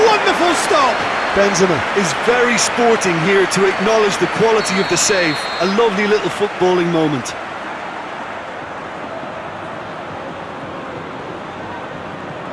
wonderful stop! Benzema is very sporting here to acknowledge the quality of the save. A lovely little footballing moment.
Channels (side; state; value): both; identical; correlation 1.00